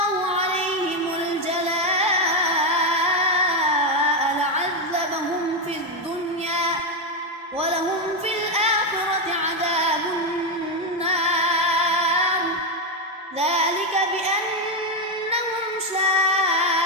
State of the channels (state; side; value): normal; both; correlation 0.07